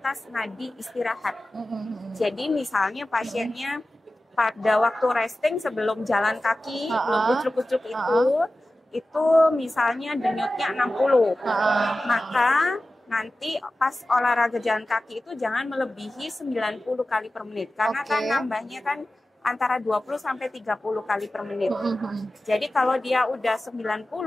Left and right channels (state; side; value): normal; both; correlation 0.95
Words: nadi istirahat. Jadi misalnya pasiennya pada waktu resting sebelum jalan kaki, belum kucuk-kucuk itu misalnya denyutnya 60. Maka nanti pas olahraga jalan kaki itu jangan melebihi 90 kali per menit. Karena kan nambahnya kan antara 20 sampai 30 kali per menit. Jadi kalau dia udah 90